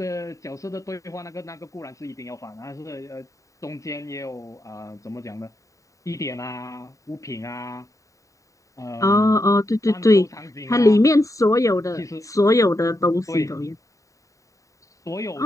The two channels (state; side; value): late; right; 0.16 ms